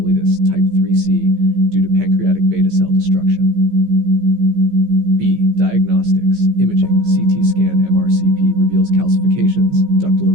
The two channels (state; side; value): late; left; 15 ms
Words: type 3C due to pancreatic beta cell destruction. B. Diagnostics, Diagnostics, imaging, CT scan, MRCP reveals calcifications, ductal